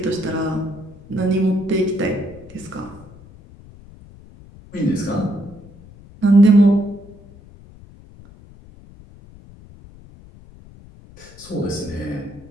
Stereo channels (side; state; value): left; noise; rumble, 21 dB below the sound